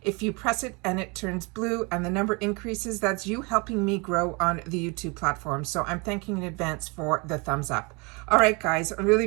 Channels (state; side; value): quieter; left; 29.0 dB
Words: If you press it and it turns blue and the number increases, that's you helping me grow on the YouTube platform. So I'm thanking in advance for the thumbs up. All right, guys, I'm